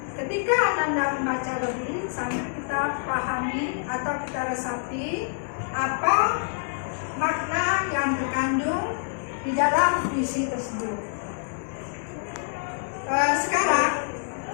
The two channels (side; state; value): right; silent; 61 dB below the other